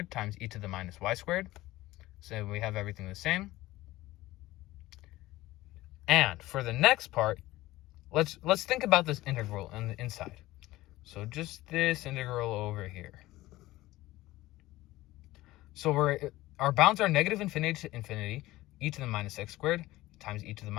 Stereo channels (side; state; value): right; quieter; 17.5 dB